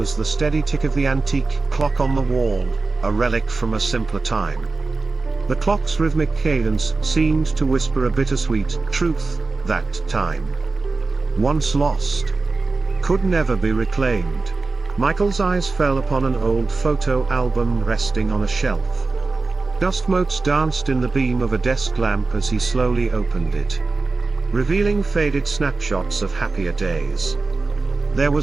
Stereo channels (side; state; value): left; quieter; 3.8 dB